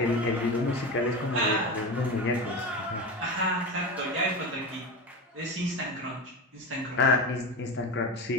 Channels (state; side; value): normal; both; correlation 0.23